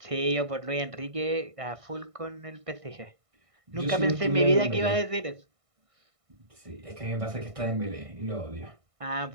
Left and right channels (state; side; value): late; left; 1.6 ms